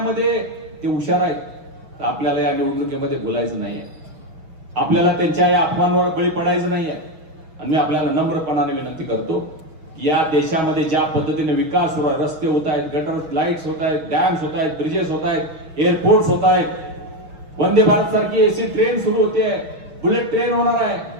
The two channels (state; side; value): late; left; 6.1 ms